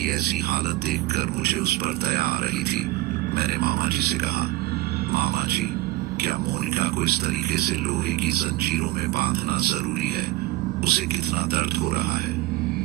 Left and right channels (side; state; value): left; quieter; 18.5 dB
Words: ऐसी हालत देखकर मुझे उस पर दया आ रही थी। मैंने मामा जी से कहा, मामा जी, क्या मोनिका को इस तरीके से लोहे की जंजीरों में बांधना जरूरी है? उसे कितना दर्द हो रहा है?